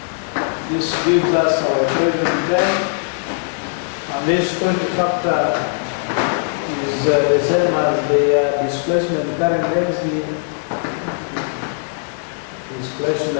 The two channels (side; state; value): right; silent; 66 dB below the other